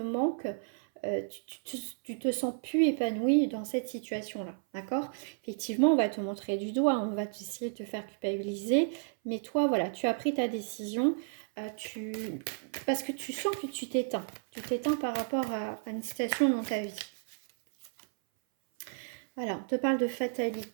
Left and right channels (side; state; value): left; silent; 56 dB below the other